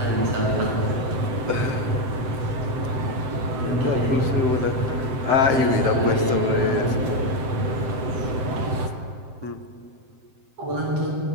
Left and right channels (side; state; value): left; late; 7.7 ms